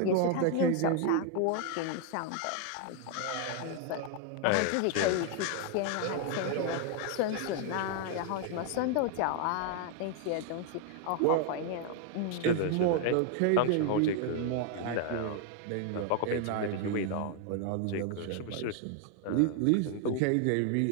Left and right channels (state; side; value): different; both; correlation 0.00